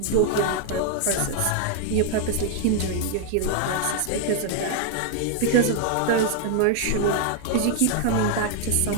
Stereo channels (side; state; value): both; different; correlation 0.00